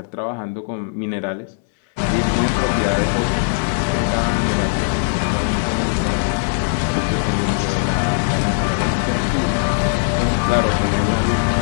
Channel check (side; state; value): right; silent; digital silence